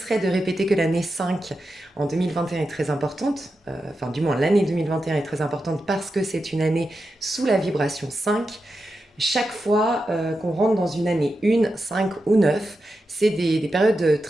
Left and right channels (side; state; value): both; normal; correlation 0.89